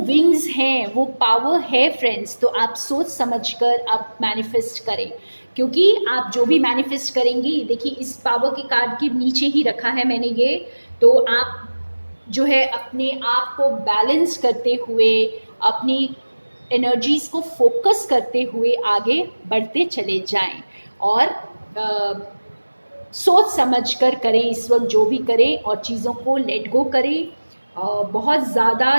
हैं, वो पावर है फ्रेंड्स, तो आप सोच समझकर आप मैनिफेस्ट करें, क्योंकि आप जो भी मैनिफेस्ट करेंगे, देखिए इस पावर के कार्ड के नीचे ही रखा है मैंने ये, तो आप जो है अपने आप को बैलेंस करते हुए, अपनी एनर्जीज को फोकस करते हुए आगे बढ़ते चले जाएं। और सोच समझ कर करें इस वक्त जो भी करें, और चीज़ों को लेट गो करें। बहुत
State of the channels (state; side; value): inverted; both; correlation -1.00